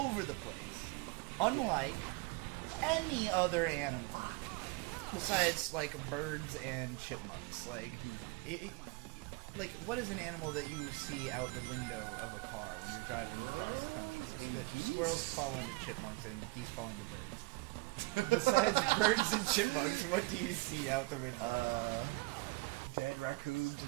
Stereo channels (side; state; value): left; quieter; 24.3 dB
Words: the place. Unlike any other animal. Besides, like, birds and chipmunks. Like, like, what is an animal that you see out the window of a car when you're driving across the country? And The geese? Squirrels fall into chipmunks and geese fall into birds. Besides birds and chipmunks, what do you see out the window? Dead raccoons